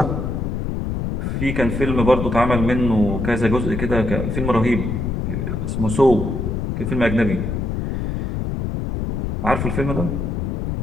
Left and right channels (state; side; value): noise; left; rumble, 2 dB below the sound